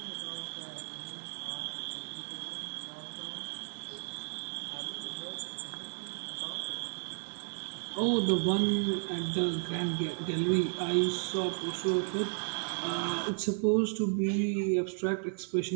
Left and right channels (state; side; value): silent; left; 55 dB below the other